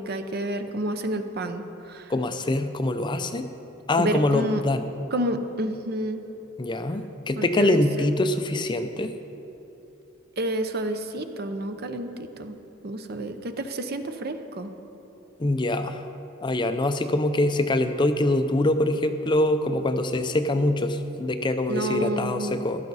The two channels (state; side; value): normal; both; correlation 0.57